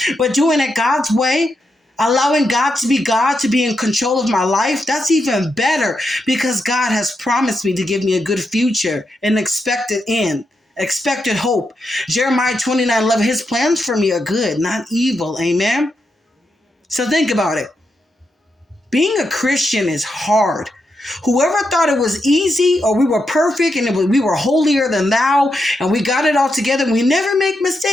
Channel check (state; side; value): normal; both; correlation 0.84